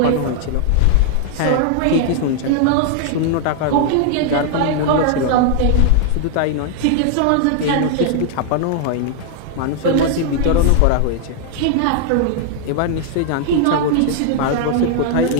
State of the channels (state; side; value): different; both; correlation 0.00